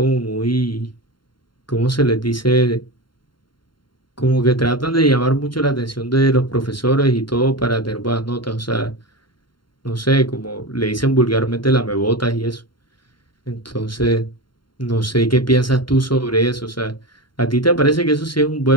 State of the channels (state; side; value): late; right; 0.72 ms